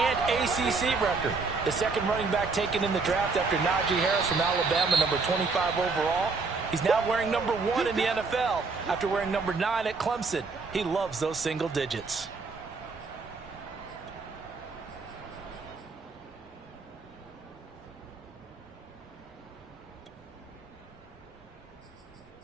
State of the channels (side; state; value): left; quieter; 4.3 dB